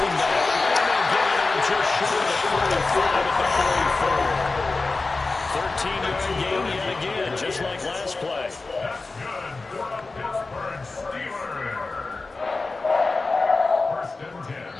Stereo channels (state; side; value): quieter; right; 3.6 dB